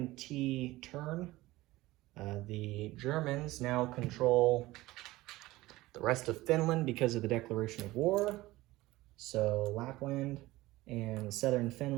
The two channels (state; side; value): quieter; left; 18.4 dB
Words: turn. The Germans now control the rest of Finland because of the declaration of war. So Lapland and southern